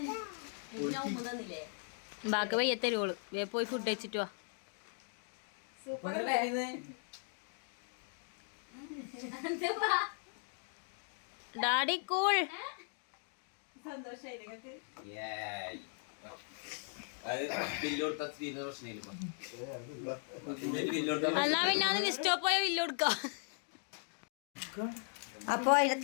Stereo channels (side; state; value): right; silent; 52 dB below the other